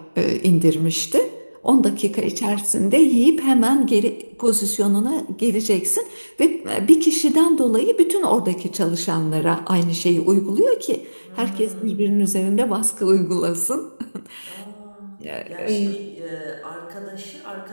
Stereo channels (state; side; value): inverted; both; correlation -1.00